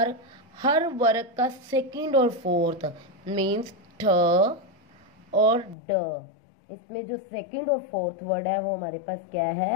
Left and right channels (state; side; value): drops out; right; at 5.8 s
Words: हर वर्ग का सेकंड और फोर्थ मीन्स ठ और ड, इसमें जो सेकंड और फोर्थ वर्ड है वो हमारे पास क्या